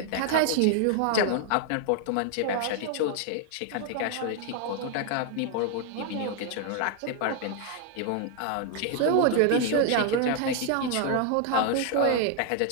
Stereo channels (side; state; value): both; different; correlation 0.00